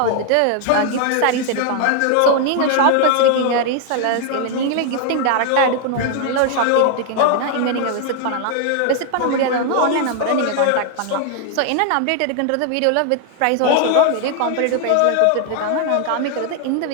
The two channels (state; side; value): different; both; correlation 0.00